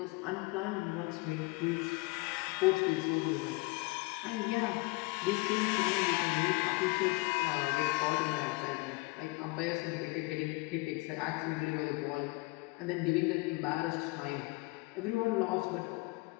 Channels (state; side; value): quieter; right; 25.9 dB